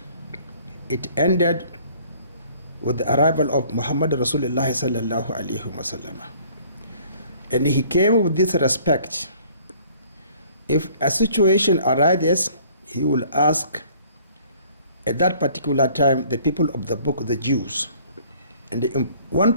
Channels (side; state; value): both; inverted; correlation -0.56